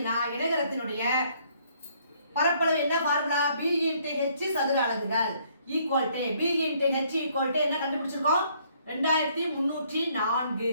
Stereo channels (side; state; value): both; inverted; correlation -0.65